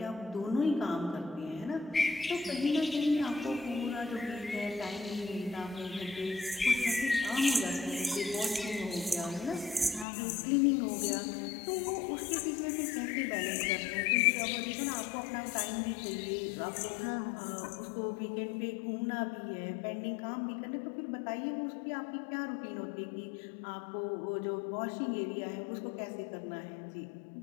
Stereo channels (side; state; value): right; drops out; at 10.1 s